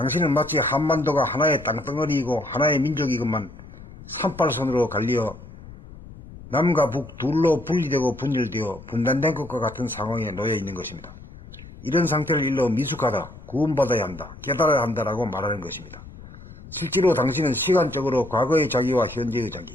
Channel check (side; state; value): left; noise; rumble, 17 dB below the sound